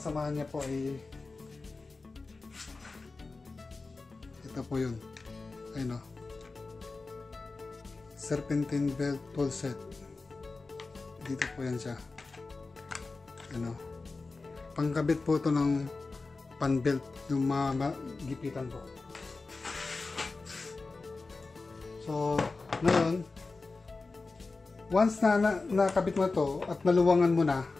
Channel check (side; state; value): right; quieter; 3.8 dB